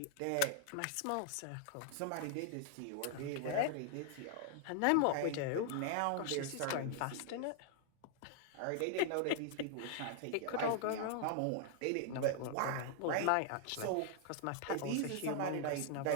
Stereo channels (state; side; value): different; both; correlation 0.00